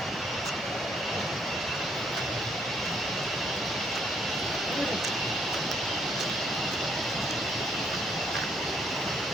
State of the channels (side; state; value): left; noise; rumble, 26 dB below the sound